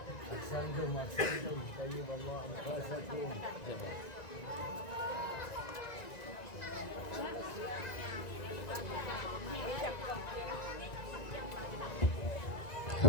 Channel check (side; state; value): right; late; 1.9 ms